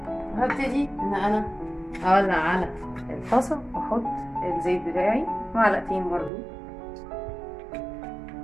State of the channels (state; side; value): drops out; left; at 6.3 s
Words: هبتدي ان انا اولع على الطاسه واحط الزيت بتاعي، معلقتين برضو